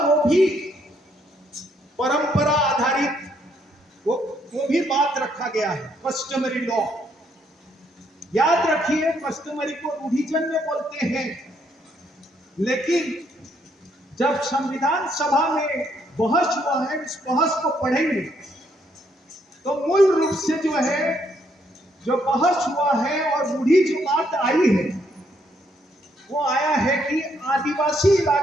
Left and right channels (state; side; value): normal; both; correlation 0.72